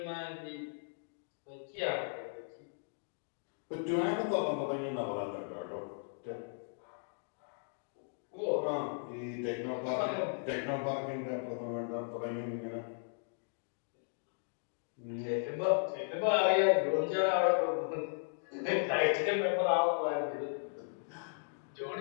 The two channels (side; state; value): right; silent; digital silence